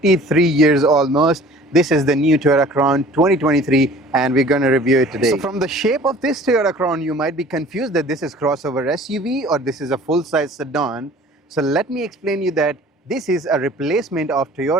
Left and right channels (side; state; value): both; normal; correlation 0.48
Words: years almost. This is the new Toyota Crown 2023, and we're going to review it today. So from the shape of this Toyota Crown, you might be confused that this is crossover SUV or this is a full-size sedan. So let me explain you that this is a replacement of